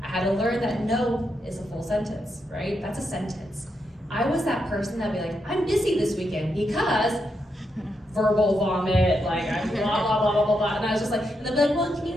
I had to learn that no is a full sentence, right? That's a sentence. I was that person that'd be like, I'm busy this weekend because verbal vomit, like I'm blah, blah, blah, blah, blah, blah. And I was just like, and they'd be like, well, can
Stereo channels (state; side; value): normal; both; correlation 0.82